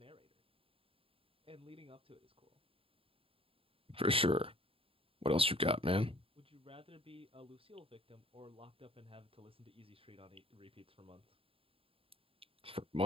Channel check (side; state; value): left; late; 0.27 ms